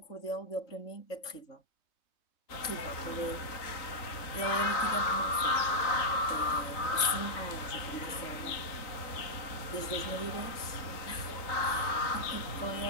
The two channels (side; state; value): right; late; 3.2 ms